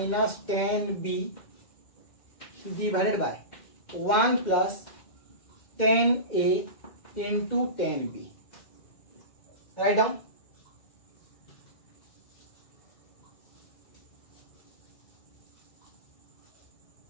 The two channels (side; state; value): right; late; 2.1 ms